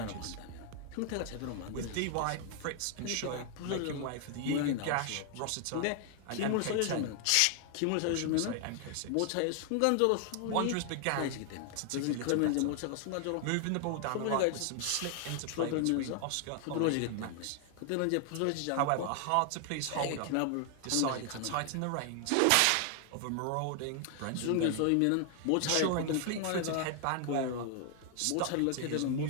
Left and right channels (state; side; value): different; both; correlation 0.00